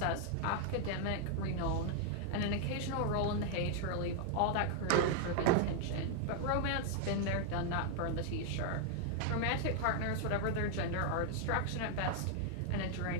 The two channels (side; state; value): both; different; correlation 0.00